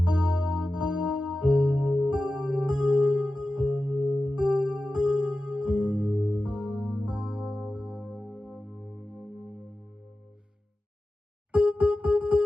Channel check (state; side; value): normal; both; correlation 0.94